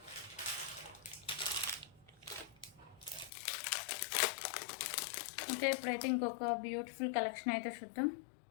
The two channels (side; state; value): right; drops out; at 3.3 s